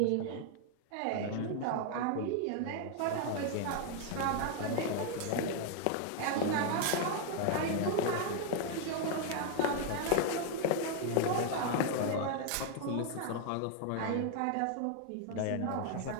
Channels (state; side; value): different; both; correlation 0.00